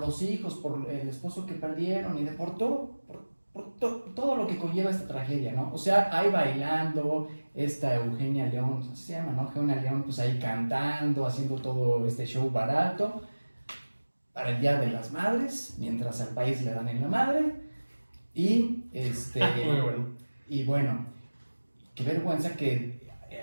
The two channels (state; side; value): inverted; both; correlation -1.00